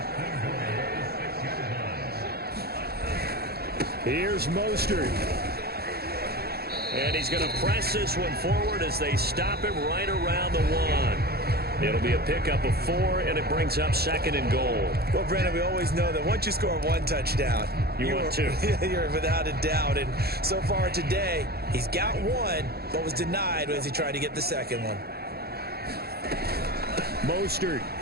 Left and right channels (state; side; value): late; left; 0.46 ms